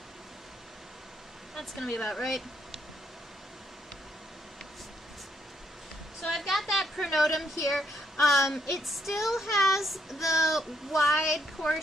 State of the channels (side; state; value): both; normal; correlation 0.74